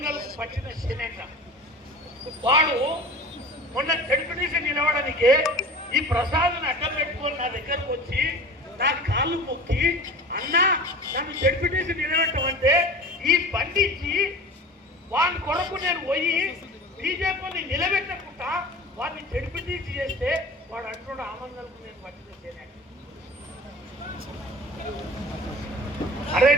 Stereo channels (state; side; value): normal; both; correlation 0.38